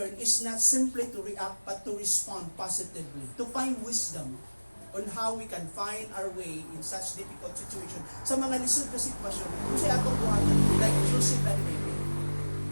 is not simply to react but to respond positively, to find wisdom on how we can find our way in such difficult situation. Sa mga lisod na sitwasyon, kung siya atong buhatan, like Joseph and Mary.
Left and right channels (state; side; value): inverted; both; correlation -1.00